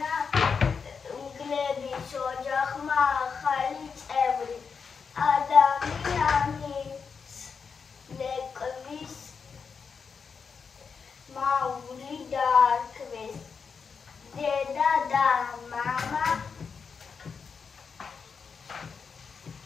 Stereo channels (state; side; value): quieter; right; 5.7 dB